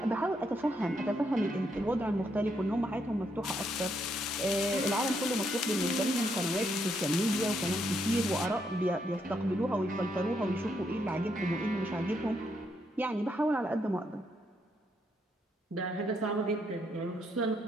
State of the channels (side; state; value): both; normal; correlation 0.76